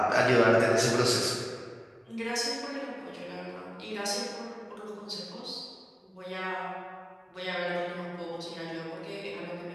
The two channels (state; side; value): identical; both; correlation 1.00